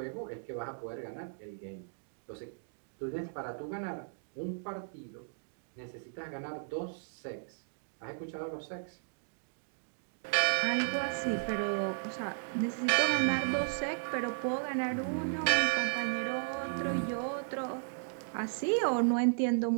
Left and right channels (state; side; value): silent; left; digital silence